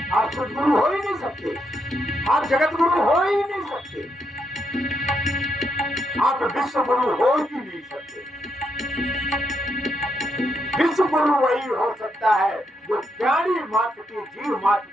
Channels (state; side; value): normal; both; correlation 0.79